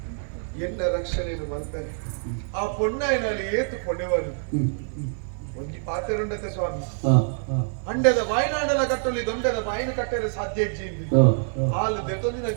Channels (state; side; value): silent; left; 58 dB below the other